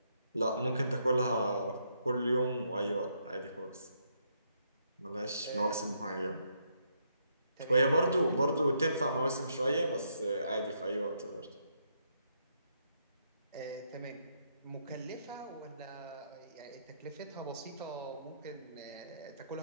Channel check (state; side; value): inverted; both; correlation -0.75